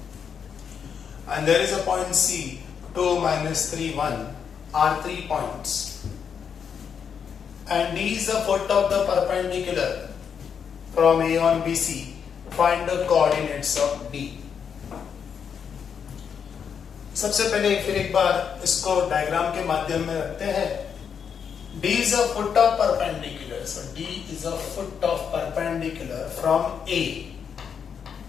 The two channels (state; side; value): quieter; right; 7.1 dB